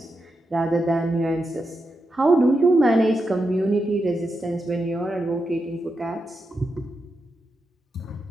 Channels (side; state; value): both; normal; correlation 0.87